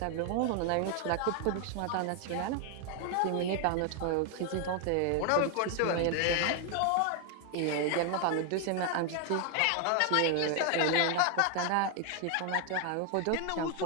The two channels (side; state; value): both; different; correlation 0.01